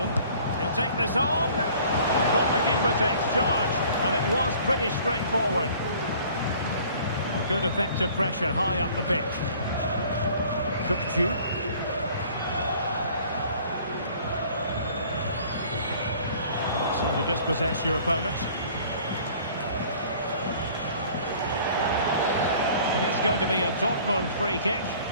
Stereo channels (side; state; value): both; inverted; correlation -0.52